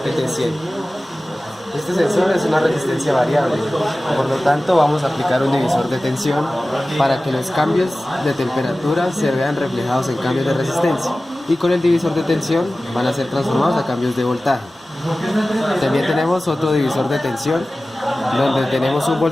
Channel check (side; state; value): both; normal; correlation 0.96